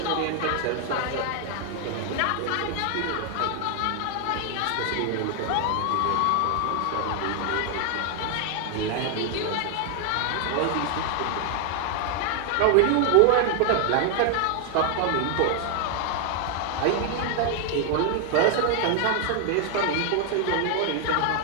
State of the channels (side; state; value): both; different; correlation 0.00